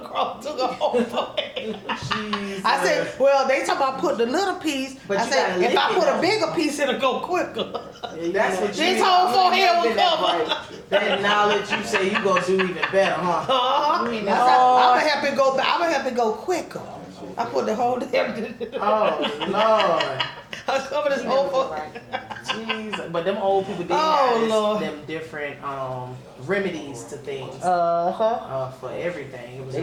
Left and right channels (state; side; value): identical; both; correlation 1.00